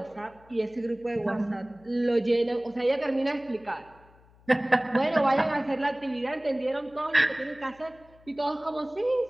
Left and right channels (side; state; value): left; noise; hum, 28 dB below the sound